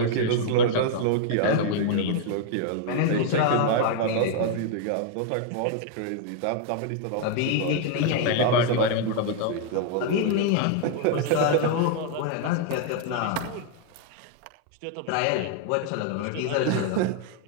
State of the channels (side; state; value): both; different; correlation 0.00